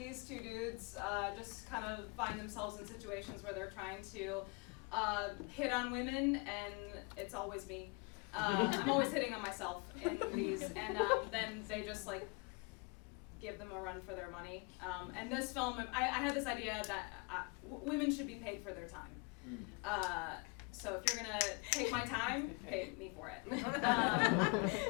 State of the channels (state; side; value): quieter; right; 31.1 dB